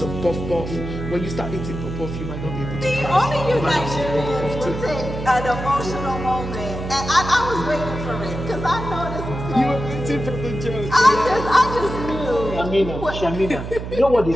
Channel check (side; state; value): right; noise; hum, 7 dB below the sound